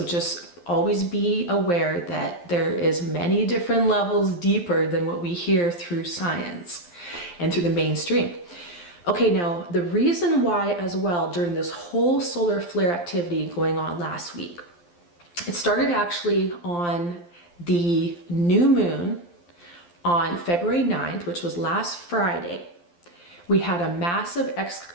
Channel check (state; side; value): late; right; 12 ms